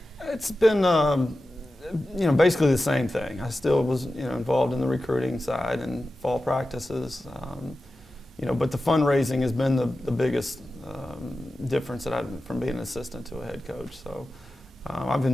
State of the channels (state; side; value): normal; both; correlation 0.93